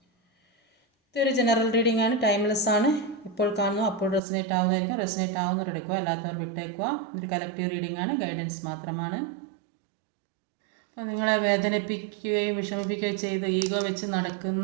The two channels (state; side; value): drops out; left; at 4.2 s